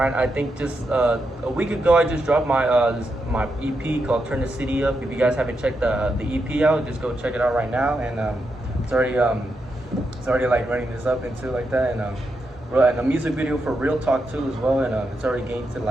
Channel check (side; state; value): both; normal; correlation 0.84